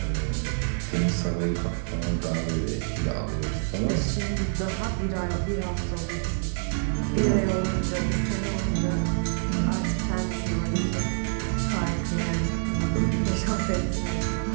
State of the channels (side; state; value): left; silent; 60 dB below the other